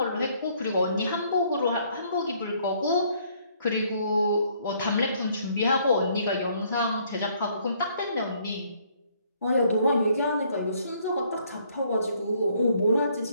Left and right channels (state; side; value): inverted; both; correlation -0.65